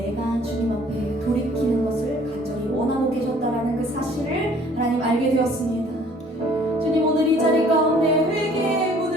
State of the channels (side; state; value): both; normal; correlation 0.56